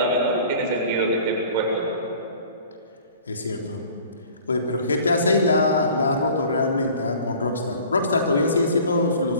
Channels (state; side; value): inverted; both; correlation -0.48